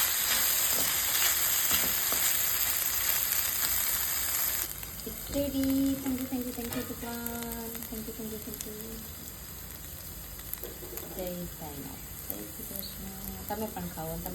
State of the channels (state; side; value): identical; both; correlation 1.00